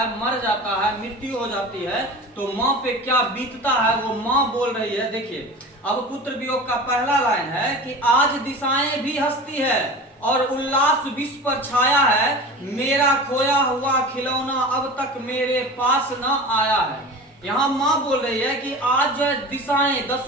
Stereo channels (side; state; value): both; normal; correlation 0.34